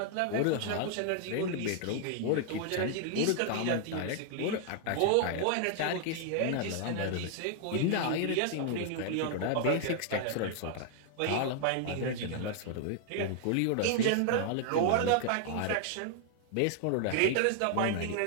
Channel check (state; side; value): different; both; correlation 0.00